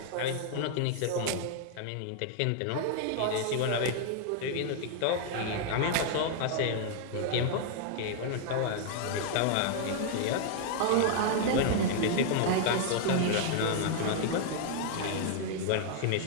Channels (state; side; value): different; both; correlation 0.00